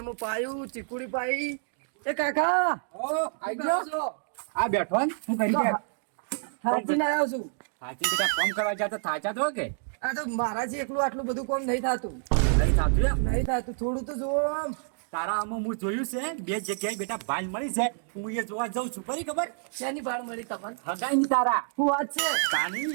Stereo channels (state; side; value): silent; left; digital silence